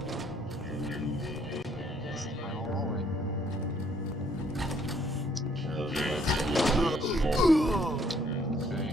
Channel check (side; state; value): both; normal; correlation 0.65